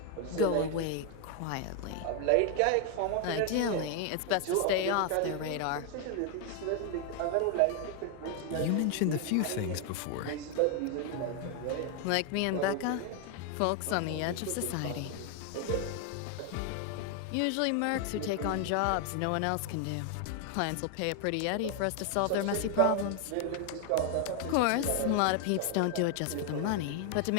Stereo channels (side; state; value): both; different; correlation 0.00